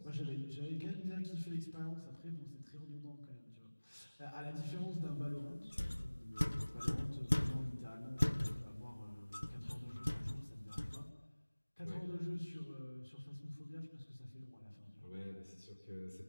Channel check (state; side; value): inverted; both; correlation -1.00